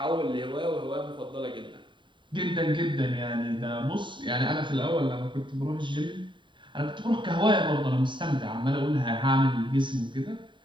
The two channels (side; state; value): left; late; 0.23 ms